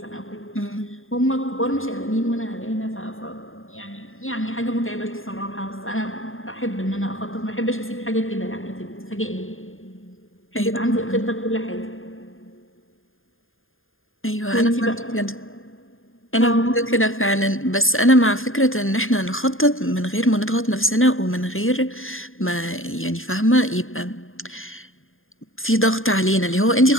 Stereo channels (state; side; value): late; right; 0.60 ms